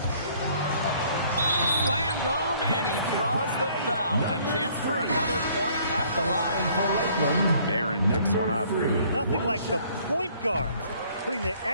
Slammed home, And he draws the foul. A chance for another point at the line. For Lakeland, Barron picks one up. Nothing like the point guard putting the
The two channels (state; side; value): inverted; both; correlation -0.60